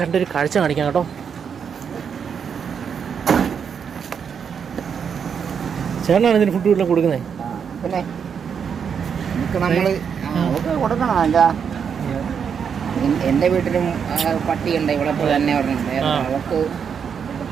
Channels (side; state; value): left; quieter; 7.0 dB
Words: കാഴ്ച കാണിക്കാം കേട്ടോ. ചേട്ടനാണ് ഇതിന് ഫുഡ് വീട്ടിൽ കൊടുക്കുന്നത്. പിന്നെ നമ്മൾ കൊടുക്കണം. എന്താ എൻ്റെ വീട്ടിലും പട്ടിയുണ്ട് ഇവിടെ തന്നെ പറഞ്ഞിട്ടുണ്ട്. അവർക്ക്